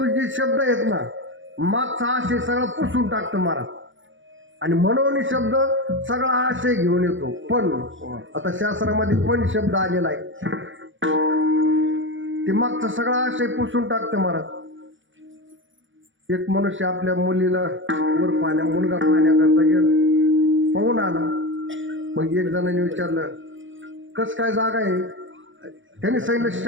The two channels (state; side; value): late; left; 0.56 ms